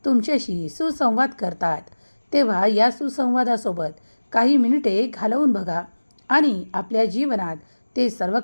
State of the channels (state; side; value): inverted; both; correlation -1.00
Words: तुमच्याशी सुसंवाद करतात. तेव्हा या सुसंवादासोबत काही मिनिटे घालवून बघा आणि आपल्या जीवनात ते सर्व